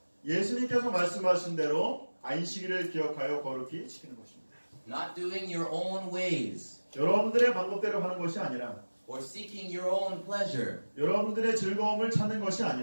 예수님께서 말씀하신 대로 안식일을 기억하여 거룩히 지키는 것입니다. Not doing your own ways 여러분들의 방법대로 하는 것이 아니라 or seeking your own pleasure. 여러분들의 즐거움을 찾는 것이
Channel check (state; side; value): inverted; both; correlation -1.00